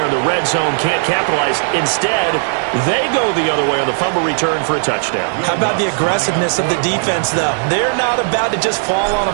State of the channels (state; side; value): silent; left; 66 dB below the other